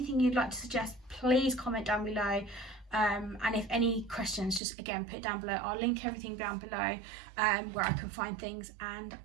you'd like to suggest, please comment down below. And if any questions, just again put it down below. I'll link everything down below where I can find things. And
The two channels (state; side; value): drops out; left; at 4.6 s